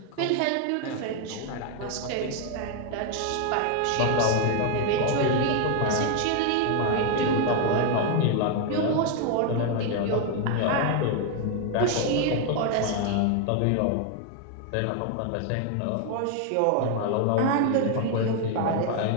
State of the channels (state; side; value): different; both; correlation 0.01